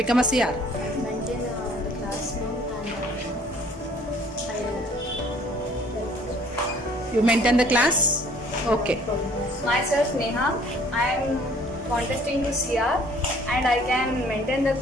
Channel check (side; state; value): both; normal; correlation 0.56